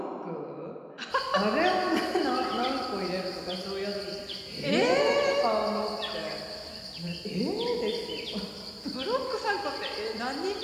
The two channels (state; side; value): identical; both; correlation 1.00